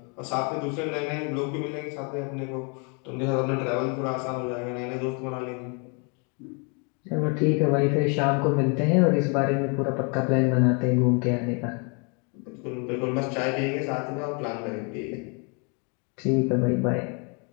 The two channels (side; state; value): right; quieter; 35.3 dB